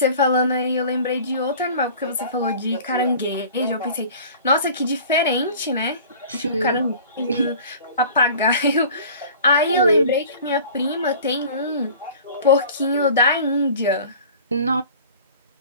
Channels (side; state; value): both; inverted; correlation -0.44